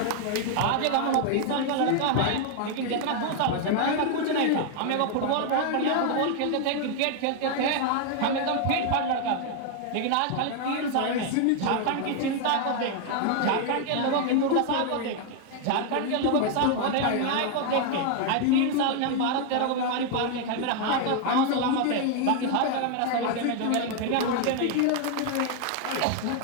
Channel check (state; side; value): different; both; correlation 0.00